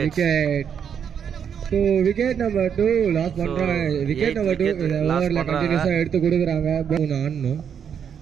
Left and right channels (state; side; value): quieter; left; 7.8 dB